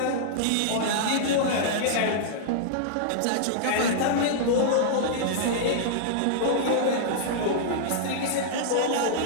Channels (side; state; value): both; different; correlation -0.02